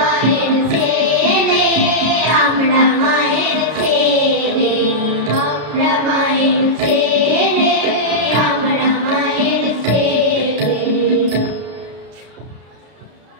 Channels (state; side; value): late; left; 33 ms